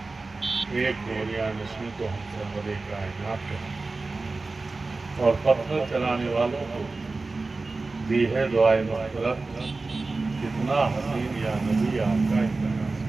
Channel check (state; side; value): quieter; left; 3.6 dB